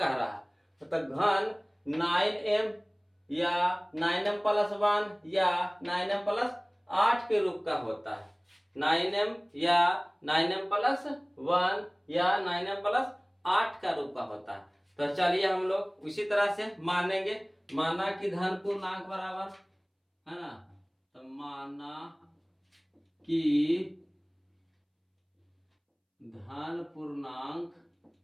रहा है, तो घन 9m या 9m प्लस 1 या 9m प्लस 8 के रूप का होता है। 9m या 9m प्लस 1 या 9m प्लस 8 का रूप का होता है। तो चलिए हम लोग उसी तरह से मानेंगे, माना कि धन पूर्णांक बराबर, है ना, तो माना कि धन पूर्णांक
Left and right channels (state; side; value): identical; both; correlation 1.00